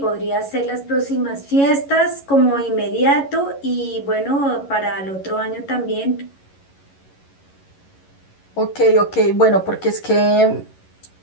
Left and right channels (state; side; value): late; right; 11 ms